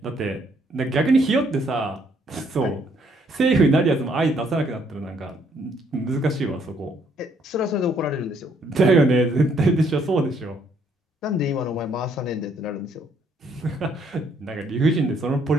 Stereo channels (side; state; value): both; normal; correlation 0.68